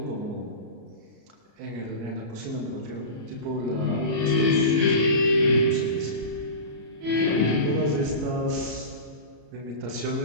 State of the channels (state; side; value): late; left; 34 ms